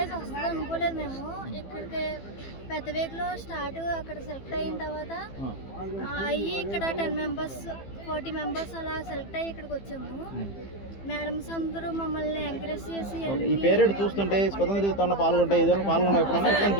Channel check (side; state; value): right; late; 15 ms